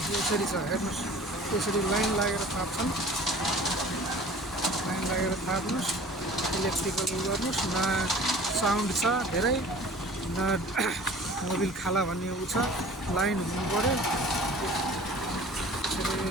यसरी छ हेर्नुहोस्, यसरी लाइन लागेर थाप्छन्, लाइन लागेर थाप्नुहोस्, इलेक्ट्रिकल गर्नुहोस्। न साउन्ड छ धेरै, न मोबिल खाला भन्ने उ छ, लाइन हुनु पऱ्यो।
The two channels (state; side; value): normal; both; correlation 0.45